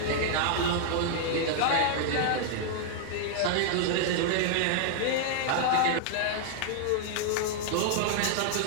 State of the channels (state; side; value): different; both; correlation 0.00